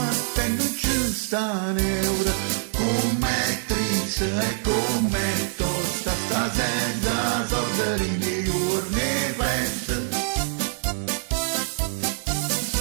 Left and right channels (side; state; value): left; silent; digital silence